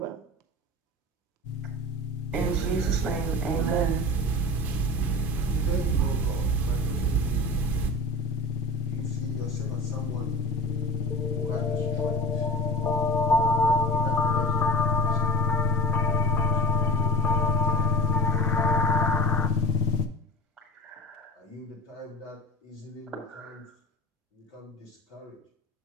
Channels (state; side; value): normal; both; correlation 0.34